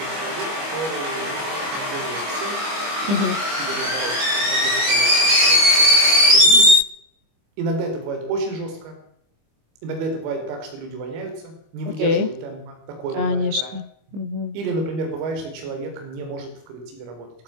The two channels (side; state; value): left; late; 25 ms